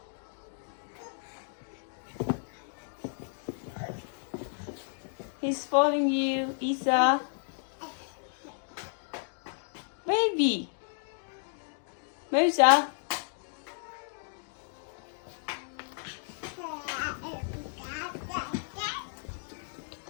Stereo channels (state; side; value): silent; right; digital silence